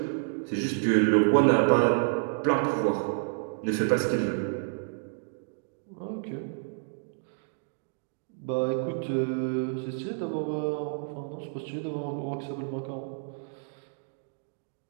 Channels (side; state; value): left; silent; digital silence